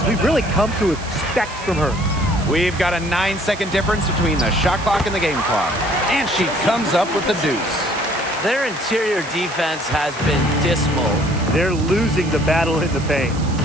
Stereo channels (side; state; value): right; noise; hiss, 16 dB below the sound